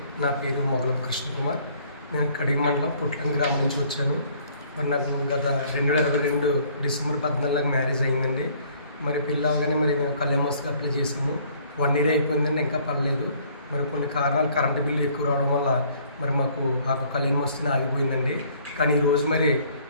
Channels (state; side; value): inverted; both; correlation -0.59